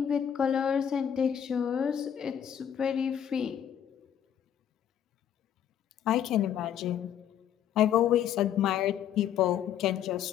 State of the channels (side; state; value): right; quieter; 9.5 dB